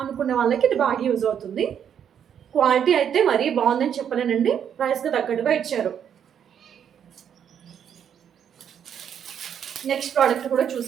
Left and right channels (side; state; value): left; quieter; 8.6 dB